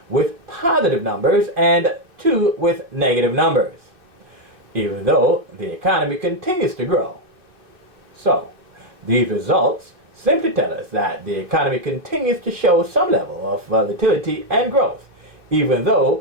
with positive numbers and 2 with negative numbers, even though the economy continues to grow. So, these results simply tell us that the economy continues to show some level of volatility and growth, even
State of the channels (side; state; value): left; late; 2.6 ms